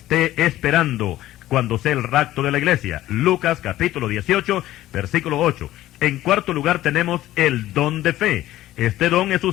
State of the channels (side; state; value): right; quieter; 14.8 dB